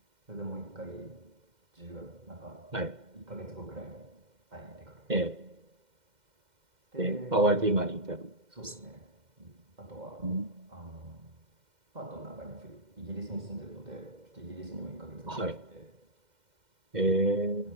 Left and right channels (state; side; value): late; left; 2.1 ms